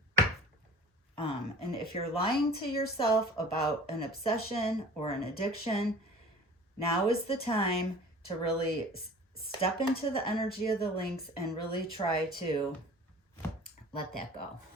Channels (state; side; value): normal; both; correlation 0.43